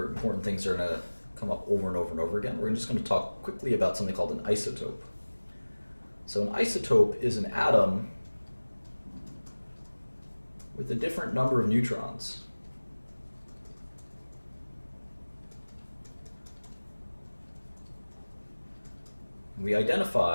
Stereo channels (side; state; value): both; inverted; correlation -1.00